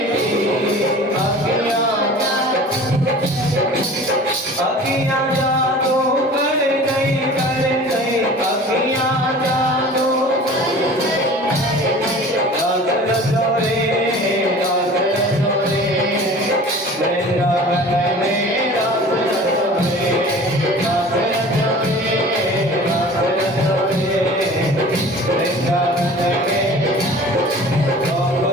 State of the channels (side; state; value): both; normal; correlation 0.42